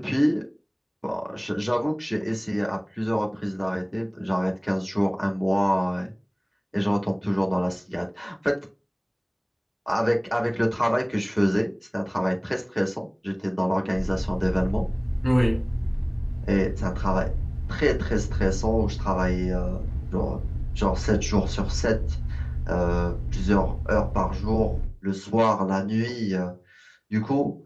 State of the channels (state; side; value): identical; both; correlation 1.00